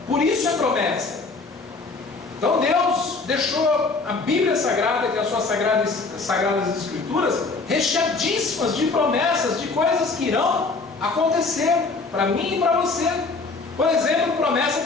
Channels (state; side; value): quieter; right; 4.0 dB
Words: por isso é promessa. Então Deus deixou a Bíblia Sagrada, que é as suas sagradas Escrituras, recheadíssimas de promessas, de coisas que irão acontecer para mim e para você. Por exemplo, promessa